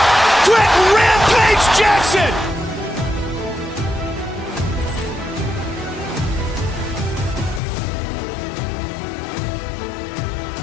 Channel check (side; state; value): right; drops out; at 7.6 s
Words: Quit Rampage Jackson!